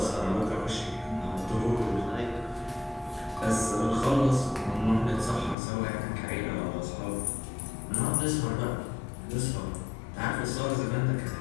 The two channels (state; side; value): drops out; right; at 5.6 s